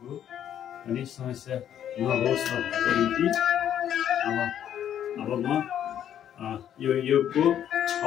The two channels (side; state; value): right; quieter; 10.1 dB